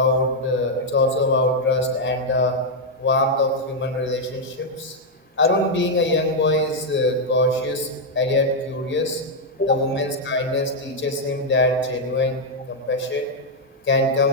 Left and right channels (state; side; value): normal; both; correlation -0.01